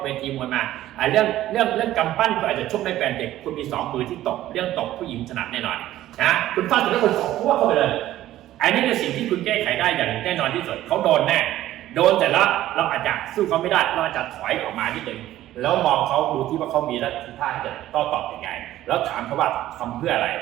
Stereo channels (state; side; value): quieter; left; 14.0 dB